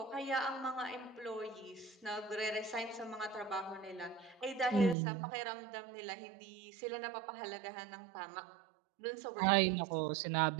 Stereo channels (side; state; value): left; drops out; at 5.0 s